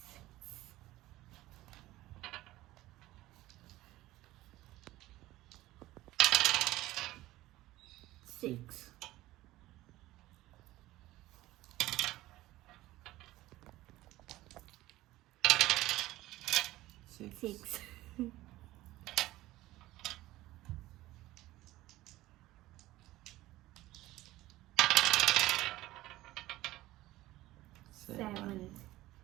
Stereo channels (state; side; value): quieter; left; 16.9 dB